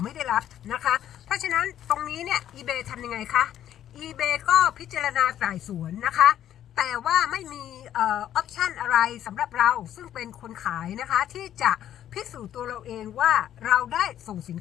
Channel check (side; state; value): right; quieter; 11.1 dB